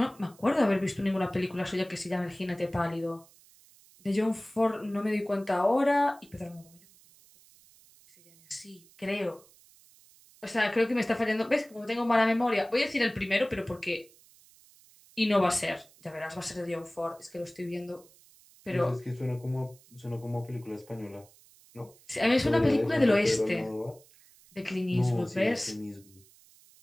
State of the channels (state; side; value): noise; right; hiss, 27 dB below the sound